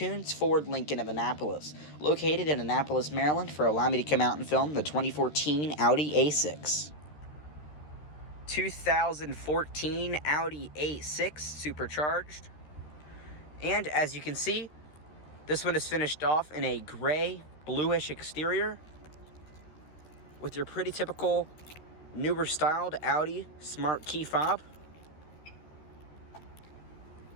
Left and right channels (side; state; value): right; late; 13 ms